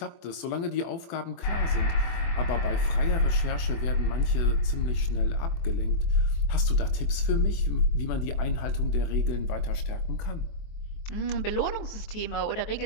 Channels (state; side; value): late; right; 24 ms